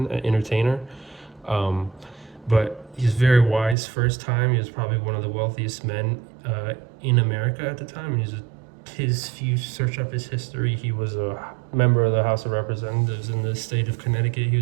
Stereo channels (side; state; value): left; drops out; at 3.8 s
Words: an entertainer, but he's very wise for his time. He was probably one of the wealthiest men in America at the time. If you search up his history, he was a member of the House of Representatives in the state of Connecticut.